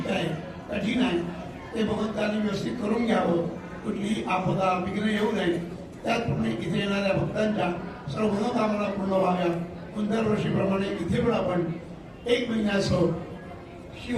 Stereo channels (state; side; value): identical; both; correlation 1.00